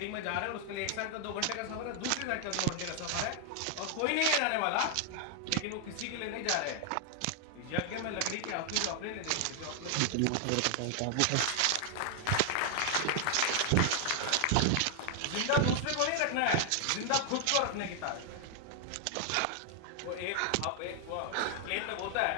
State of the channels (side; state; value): both; different; correlation 0.00